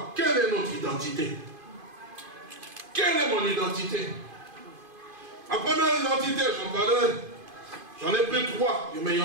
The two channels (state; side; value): late; left; 2.5 ms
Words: quelle est notre identité? Quelle est mon identité? Ma première identité, j'en ai pris 3, mais il y